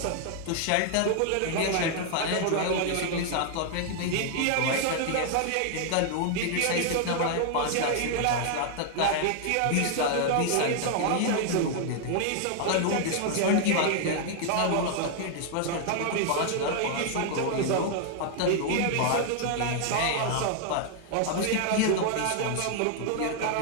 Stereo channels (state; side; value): different; both; correlation 0.00